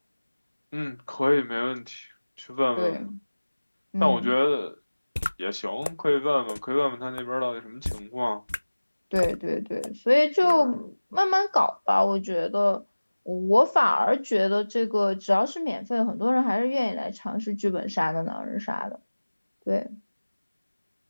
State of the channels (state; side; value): inverted; both; correlation -1.00